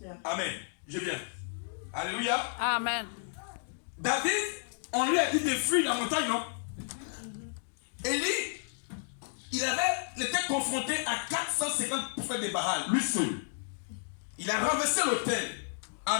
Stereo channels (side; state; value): right; silent; digital silence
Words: Amen. Je viens. Alléluia. Amen. David, on lui a dit de fuir la montagne, non? Élie, il était confronté à 450 prophètes de Baal, lui seul. Il a renversé l'autel.